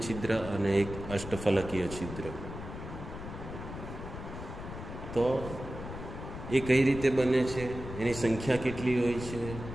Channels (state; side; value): noise; left; rumble, 9 dB below the sound